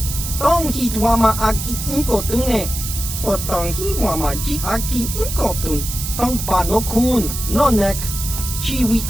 tong hitwama ag inkotune, portang himwama ji aki inkotun, tong pa no kun, no nek, chiwi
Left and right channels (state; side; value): noise; right; hiss, 6 dB below the sound